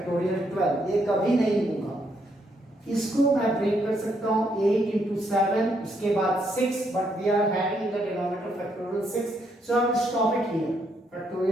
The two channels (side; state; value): both; normal; correlation 0.74